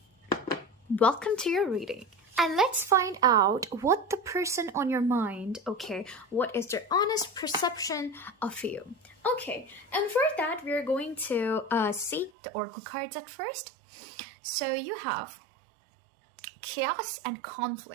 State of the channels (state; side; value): drops out; left; at 12.3 s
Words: welcome to your reading. And let's find out what the person on your mind, okay, what is their honest perception of you. Okay, and for that, we're going to see the oracle cards at first. So you have chaos and